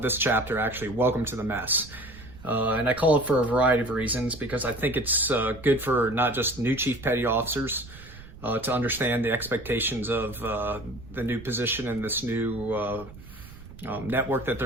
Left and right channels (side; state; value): right; noise; rumble, 17 dB below the sound